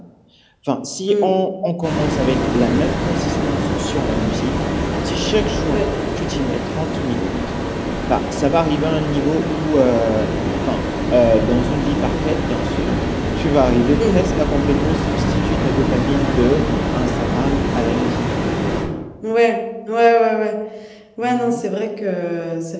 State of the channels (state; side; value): identical; both; correlation 1.00